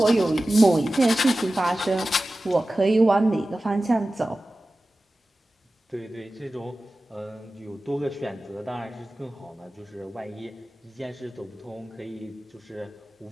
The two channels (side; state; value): both; normal; correlation 0.95